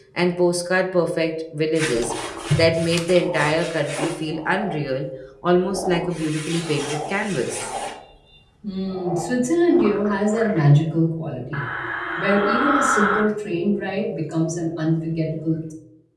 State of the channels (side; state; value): both; identical; correlation 1.00